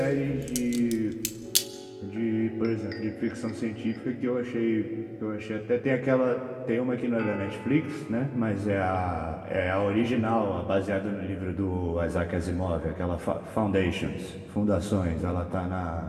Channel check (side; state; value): both; identical; correlation 1.00